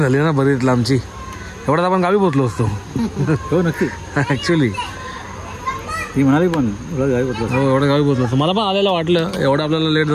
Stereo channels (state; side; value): identical; both; correlation 1.00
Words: झाली ना बरीच लांबची. एवढ्यात आपण गावी पोचलो असतो. हो नक्की. ॲक्च्युली ती म्हणाली पण गावी पोचलो. हो एवढं गावी पोचलो असतो. मला पण आलेलं वाटलं एवढं आपल्याला लेट